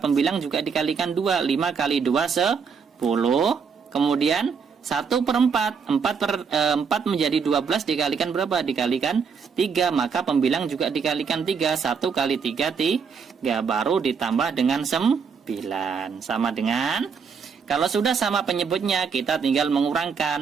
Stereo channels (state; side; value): quieter; left; 6.0 dB